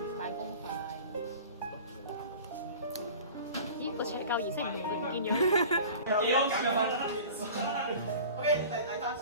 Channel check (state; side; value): inverted; both; correlation -0.40